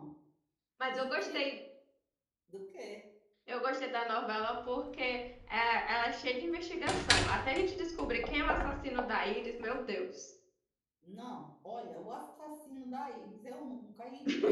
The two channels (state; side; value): identical; both; correlation 1.00